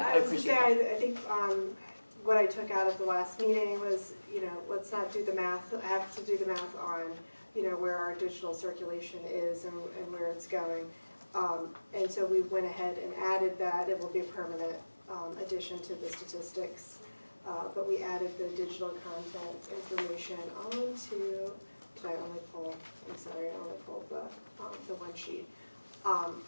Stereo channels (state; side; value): inverted; both; correlation -1.00